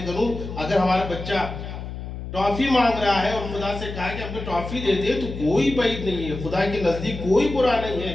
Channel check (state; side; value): noise; left; hum, 8 dB below the sound